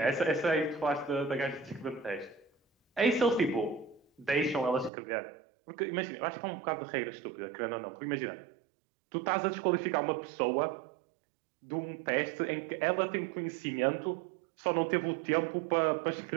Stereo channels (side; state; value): left; drops out; at 4.9 s